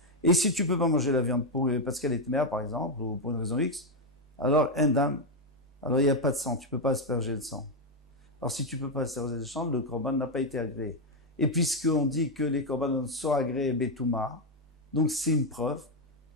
Et si tu peux pas manger la viande parce qu'elle est mère, par exemple, ou pour une raison X, alors, en dam, alors il n'y a pas de sang, tu peux pas asperger le sang. Alors, si tu peux pas asperger le sang, le korban n'a pas été agréé. Et puisqu'on dit que les korbanos sont agréés betouma, donc c'est une preuve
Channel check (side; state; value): both; normal; correlation 0.03